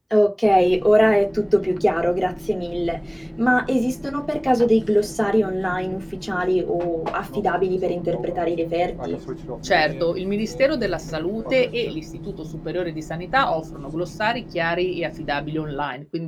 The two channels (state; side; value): identical; both; correlation 1.00